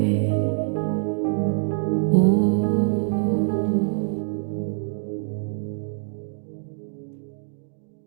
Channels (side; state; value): left; silent; digital silence